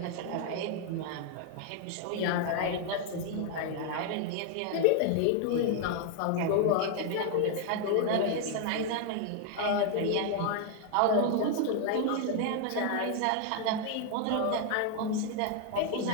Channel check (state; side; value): different; both; correlation 0.00